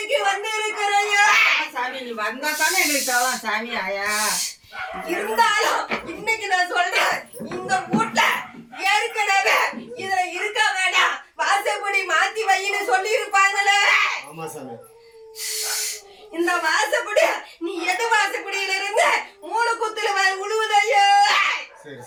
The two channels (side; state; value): both; identical; correlation 1.00